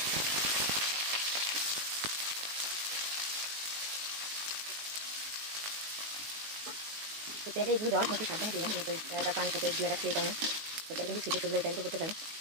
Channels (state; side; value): late; left; 19 ms